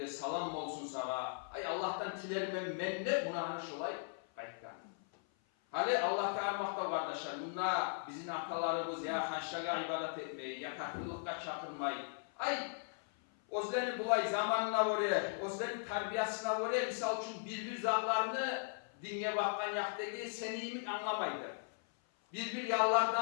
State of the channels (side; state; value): right; silent; 52 dB below the other